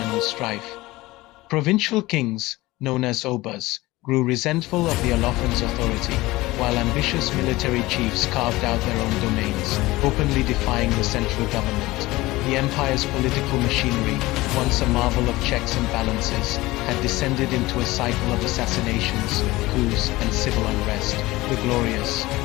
strife. Provincial kings, known as Obas, grew resentful of the Olofin's authority, while ambitious military chiefs carved out their own domains, openly defying the central government. The empire's political machinery, once a marvel of checks and balances, had descended into a cycle of assassinations, coups, and civil unrest. The glorious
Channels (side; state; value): right; quieter; 19.4 dB